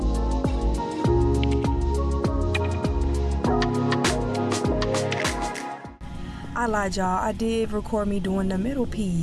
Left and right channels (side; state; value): both; identical; correlation 1.00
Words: I lied, y'all. I did record me doing the middle